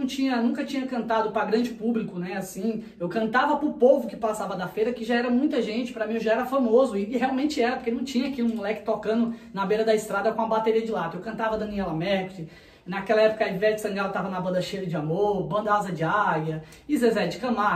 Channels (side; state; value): both; identical; correlation 1.00